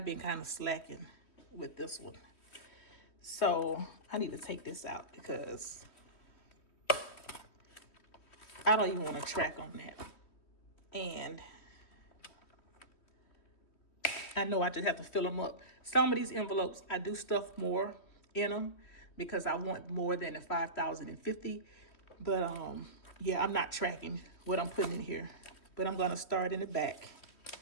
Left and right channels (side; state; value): right; late; 3.1 ms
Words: been kind of slacking with this one. So I need to take this out because I don't even want to track on that. And I know I just have to fill them up. Some of these envelopes, I do stuff more in them because I want more than the 5,050. But yeah, I'm not tracking what I'm putting in here. But I'm going to start in the back.